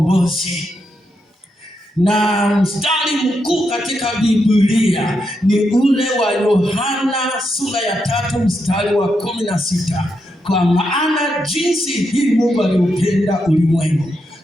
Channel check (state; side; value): normal; both; correlation 0.83